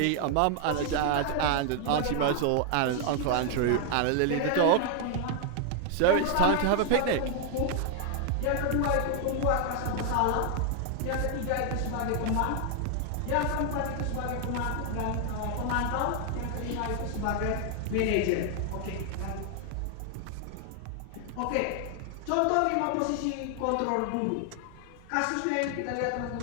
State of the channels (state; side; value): different; both; correlation 0.00